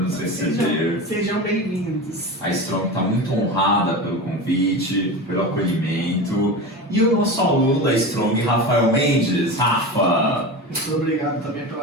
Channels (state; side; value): normal; both; correlation 0.27